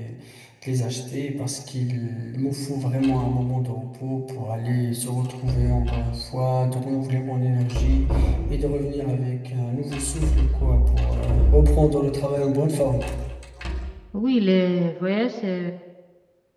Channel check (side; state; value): both; identical; correlation 1.00